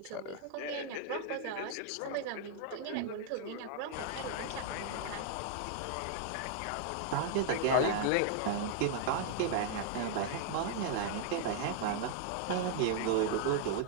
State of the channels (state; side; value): different; both; correlation -0.01